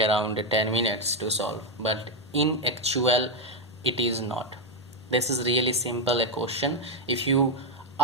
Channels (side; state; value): both; normal; correlation 0.05